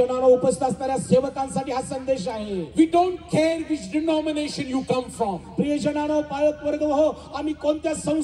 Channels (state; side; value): identical; both; correlation 1.00